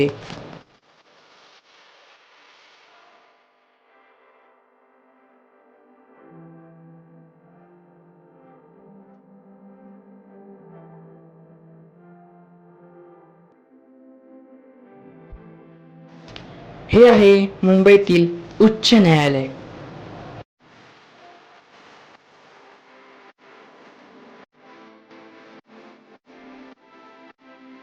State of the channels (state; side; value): identical; both; correlation 1.00